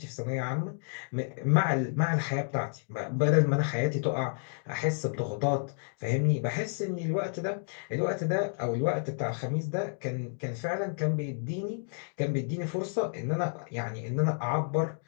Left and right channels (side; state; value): right; silent; digital silence